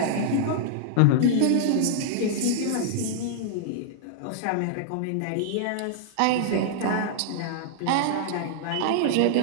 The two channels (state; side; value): different; both; correlation -0.01